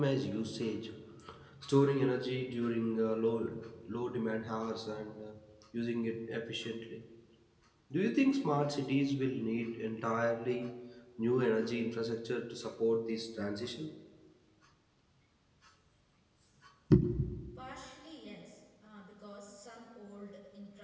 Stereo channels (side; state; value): both; identical; correlation 1.00